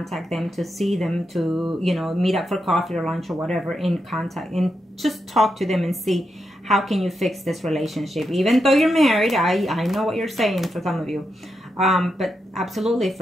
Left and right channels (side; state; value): both; normal; correlation 0.85